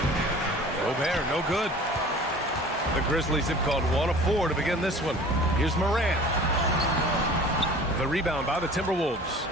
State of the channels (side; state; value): both; normal; correlation 0.44